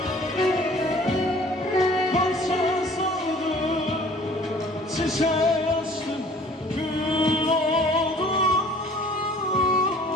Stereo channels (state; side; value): normal; both; correlation 0.51